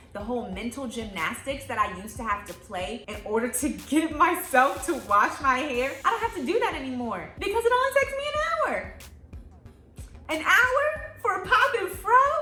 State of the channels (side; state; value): both; identical; correlation 1.00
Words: The whole mental gymnastics that I used to have to play in order to get myself to wash my hair, I don't have to do that anymore because it only takes me an hour. An hour for a pop and fro?